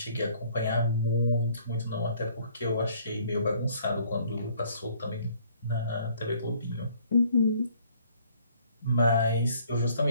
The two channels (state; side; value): inverted; both; correlation -0.60